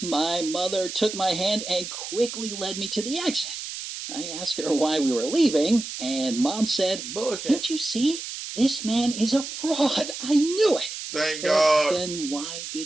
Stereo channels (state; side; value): noise; right; hiss, 8 dB below the sound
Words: my mother took my hand and quickly led me to the exit. I asked her why we were leaving, and Mom said, Bullshit. "Can't you see? This man is a fraud. I knew it." Thank But God. then why